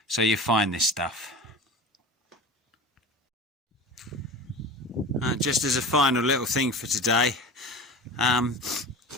So you find this stuff. Just as a final little thing for today,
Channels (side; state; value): both; normal; correlation 0.34